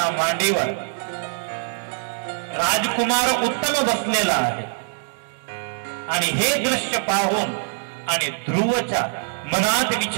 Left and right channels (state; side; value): silent; left; digital silence